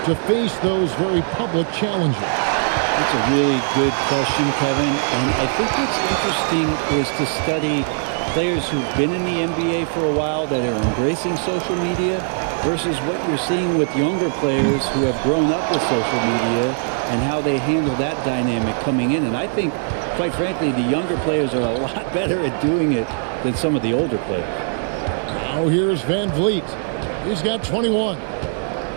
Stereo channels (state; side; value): silent; left; digital silence